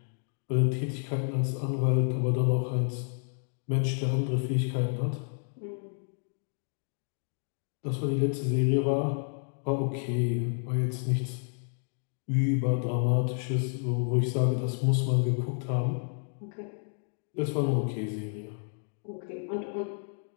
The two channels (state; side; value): silent; right; digital silence